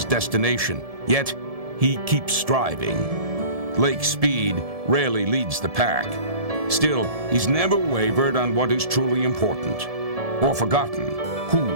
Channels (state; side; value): late; left; 1.7 ms